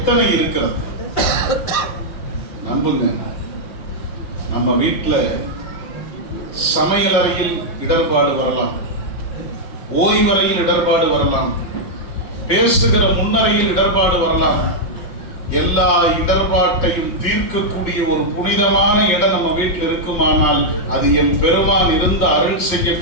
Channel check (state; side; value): late; right; 5.7 ms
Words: இருக்கிறது? நம்புங்க, நம்ம வீட்டுல சமையல் அறையில் இடர்பாடு வரலாம், ஓய்வறையில் இடர்பாடு வரலாம், பேசுகிற முன்னறையில் இடர்பாடு வரலாம். எல்லா இடர்பாட்டையும் தீர்க்கக்கூடிய ஒரு புனிதமான இடம் நம்ம வீட்டில் இருக்குமானால் அது என் பெருமான் இருந்து அருள்